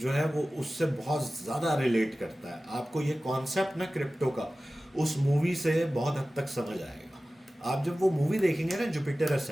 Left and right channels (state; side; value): normal; both; correlation 0.96